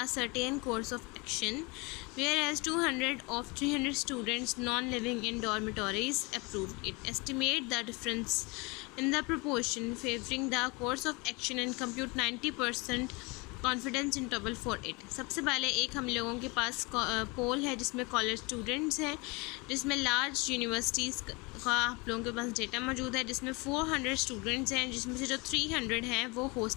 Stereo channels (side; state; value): right; quieter; 27.3 dB